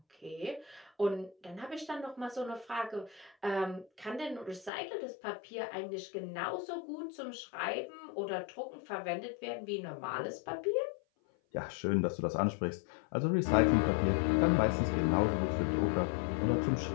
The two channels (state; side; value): drops out; right; at 4.7 s